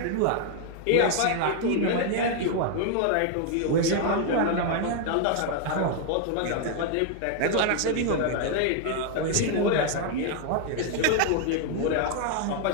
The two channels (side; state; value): both; different; correlation 0.00